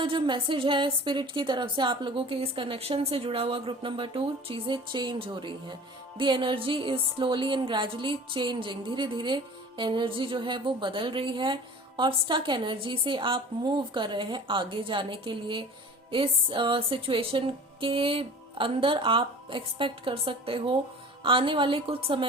जो मैसेज है स्पिरिट की तरफ से आप लोगों के इस कनेक्शन से जुड़ा हुआ ग्रुप नंबर 2, चीजें चेंज हो रही हैं। The energy is slowly and gradually changing. धीरे धीरे एनर्जी जो है वो बदल रही है और स्टक एनर्जी से आप मूव कर रहे हैं आगे जाने के लिए। इस सिचुएशन के अंदर आप एक्सपेक्ट कर सकते हो आने वाले कुछ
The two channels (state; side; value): normal; both; correlation 0.42